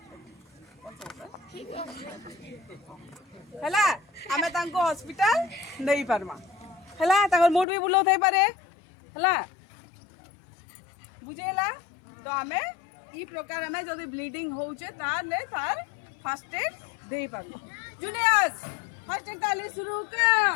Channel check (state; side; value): drops out; right; at 7.7 s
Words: हैला। हमें तांकू हॉस्पिटल नहीं परमा हैला। ताकर मूड भी बुलो थे पारे हैला बुझेला। तो हमें ई प्रकार हमें जदि ब्लीडिंग होचे ताले तार फर्स्ट एड देई पाबो। जूनियर्स फर्स्ट एड ताले शुरू